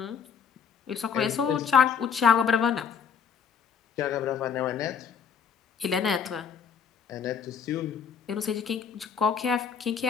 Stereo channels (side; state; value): right; quieter; 7.0 dB